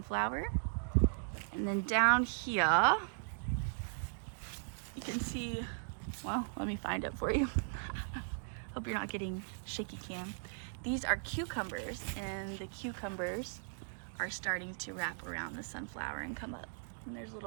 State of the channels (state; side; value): silent; left; digital silence